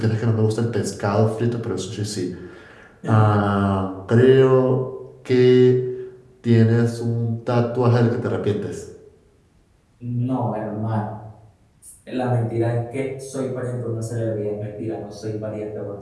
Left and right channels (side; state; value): both; identical; correlation 1.00